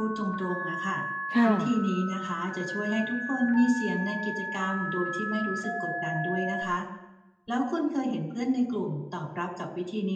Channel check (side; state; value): both; identical; correlation 1.00